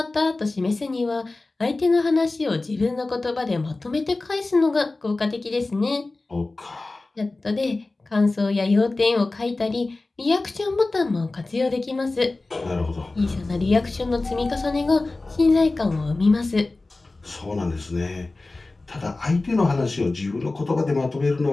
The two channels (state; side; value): quieter; right; 3.2 dB